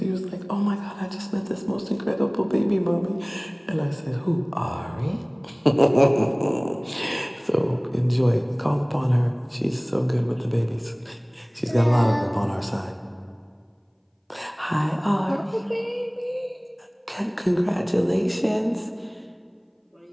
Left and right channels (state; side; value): identical; both; correlation 1.00